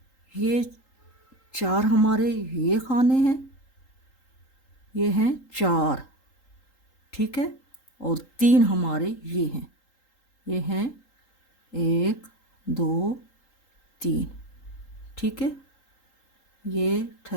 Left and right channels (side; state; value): right; late; 3.8 ms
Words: ये 4 हमारे ये खाने हैं, ये हैं 4 ठीक है, और 3 हमारे ये हैं, ये हैं 1 2 3 ठीक है। ये